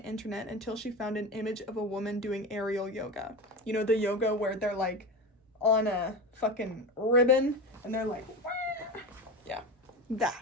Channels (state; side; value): normal; both; correlation 0.24